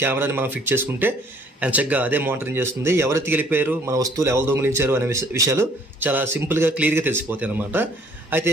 కెమెరాని మనం ఫిక్స్ చేసుకుంటే చక్కగా అదే మానిటరింగ్ చేస్తుంది. ఎవరు ఎత్తుకెళ్ళిపోయారు, మన వస్తువులు ఎవరు దొంగిలించారు అనే విషయాలు చాలా సింపుల్గా క్లియర్గా తెలిసిపోతాయి అనమాట. అయితే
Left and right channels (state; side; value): normal; both; correlation 0.59